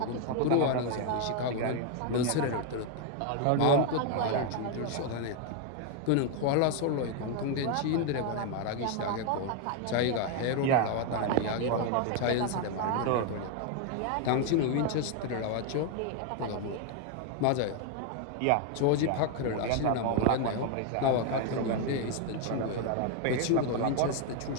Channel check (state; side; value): different; both; correlation 0.01